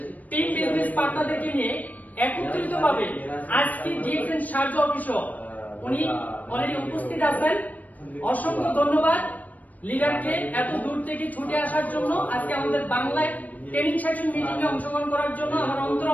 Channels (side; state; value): right; late; 0.076 ms